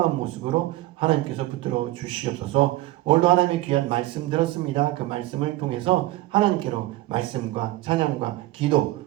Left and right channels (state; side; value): quieter; left; 17.2 dB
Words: 모습으로 하나님께서 붙들어 주시옵소서. 오늘도 하나님의 귀한 말씀 들었습니다. 그 말씀을 통해서 하나님께로 말씀과 찬양과 기도